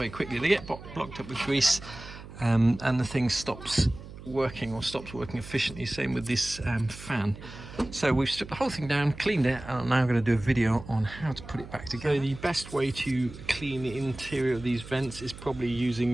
quickly, they get blocked up with grease, and the thing stops working efficiently. Same with this fan. So we've stripped the whole thing down, cleaned it, and I'm now going to do a video on how to put it back together. So the best way to clean the interior of these vents is probably using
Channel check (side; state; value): right; noise; hum, 15 dB below the sound